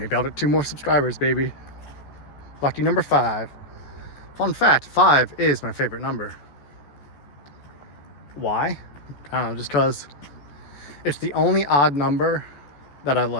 I'll get 2 more subscribers, baby. Lucky number 5. Fun fact, 5 is my favorite number. Why? I don't know, just because it's the only odd number that I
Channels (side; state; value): right; late; 14 ms